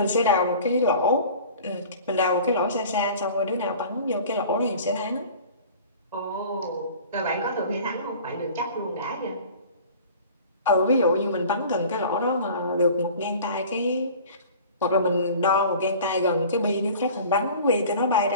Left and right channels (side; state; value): both; inverted; correlation -0.43